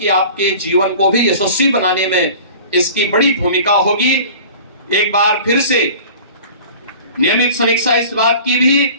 आपके जीवन को भी यशस्वी बनाने में इसकी बड़ी भूमिका होगी। एक बार फिर से नियमित समीक्षा इस बात की भी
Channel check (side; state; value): both; inverted; correlation -0.42